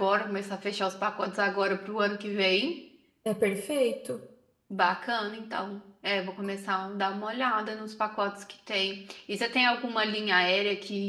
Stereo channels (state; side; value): identical; both; correlation 1.00